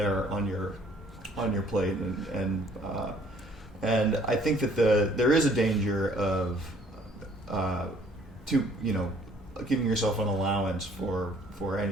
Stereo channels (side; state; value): both; normal; correlation 0.59